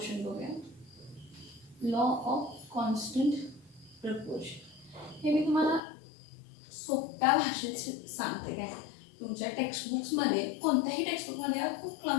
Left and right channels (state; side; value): drops out; right; at 5.8 s